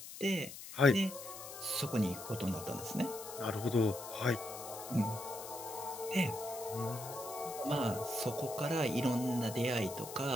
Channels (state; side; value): noise; left; hiss, 12 dB below the sound